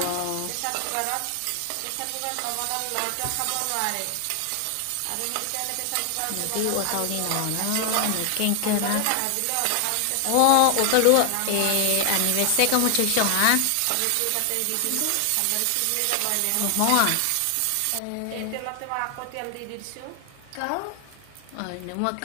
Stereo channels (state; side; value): different; both; correlation 0.00